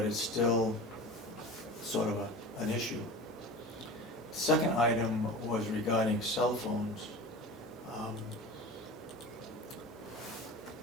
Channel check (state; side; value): normal; both; correlation 0.34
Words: it's still sort of an issue. Second item was regarding cell phones.